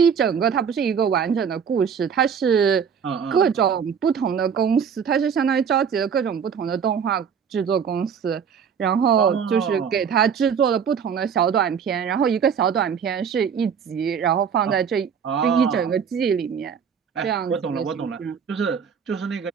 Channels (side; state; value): left; quieter; 7.1 dB